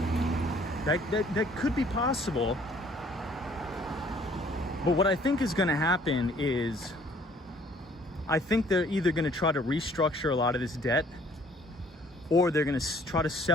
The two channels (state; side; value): normal; both; correlation 0.58